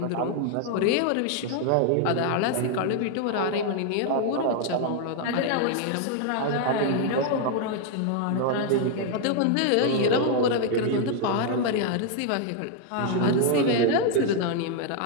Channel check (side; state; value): both; different; correlation 0.00